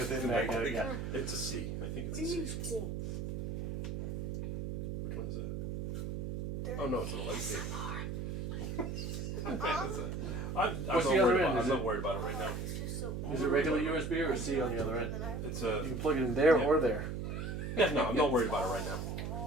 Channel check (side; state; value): right; noise; hum, 3 dB below the sound